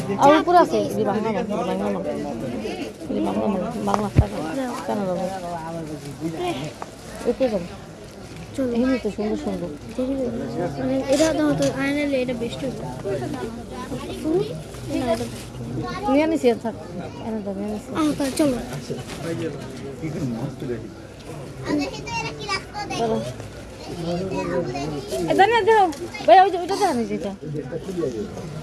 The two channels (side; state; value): both; identical; correlation 1.00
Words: আর উপরে আছে এই বাংলা না বাংলা না এই বাংলা না বাংলা টাকা কেন যাবো উপরে যাবো এমনি তো সুন্দর সুন্দর মানে এটা দাও তো আয়নালে এটা বেস্ট নিয়ে নিছি থাক এনে দাও নিয়ে নিছি তাহলে চলো চলো জানি দেখো ভাই ওই যে ওইটা দেখা নিয়েছি এটা